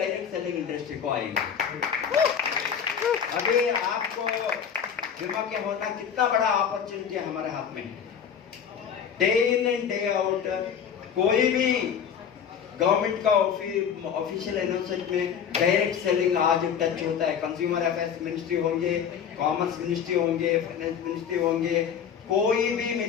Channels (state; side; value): quieter; right; 7.8 dB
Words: सेलिंग इंडस्ट्री को आएंगे। अभी आपको जुमा के होना कितना बड़ा अपॉर्चुनिटी हमारे हाथ में है। Day in and day out कोई भी गवर्नमेंट का ऑफिशियल अनाउंसमेंट में डायरेक्ट सेलिंग आज टच होता है। कंज्यूमर अफेयर्स मिनिस्ट्री होंगे, कॉमर्स मिनिस्ट्री होंगे, फाइनेंस मिनिस्ट्री होंगे, कोई भी